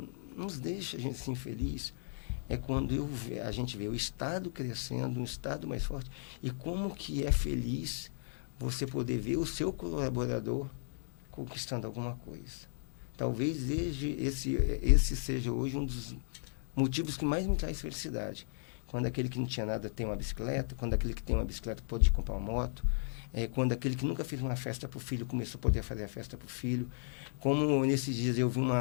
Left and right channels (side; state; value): right; silent; 54 dB below the other